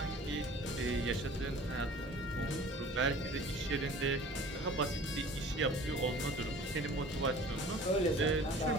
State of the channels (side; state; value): both; normal; correlation 0.46